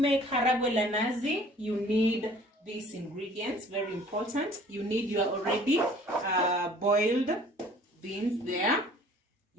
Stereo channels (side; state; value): both; normal; correlation 0.52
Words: haragwe la nazi, you need these ingredients, very important. You need your already boiled beans there.